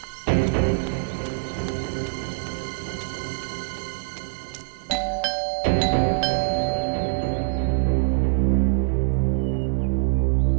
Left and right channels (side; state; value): left; silent; digital silence